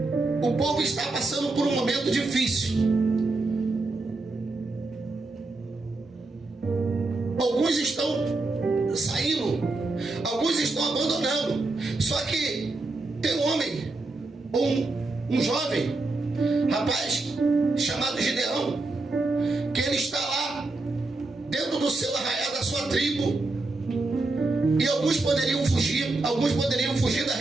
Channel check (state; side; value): quieter; left; 3.2 dB